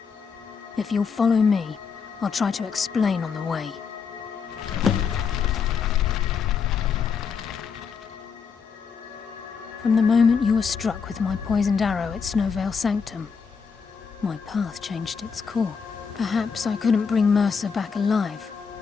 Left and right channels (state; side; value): quieter; right; 5.9 dB